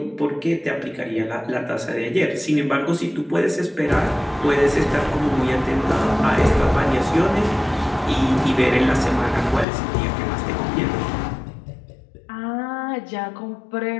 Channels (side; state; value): right; drops out; at 9.7 s